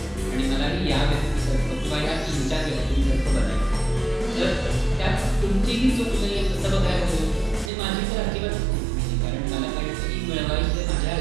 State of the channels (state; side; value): drops out; left; at 7.7 s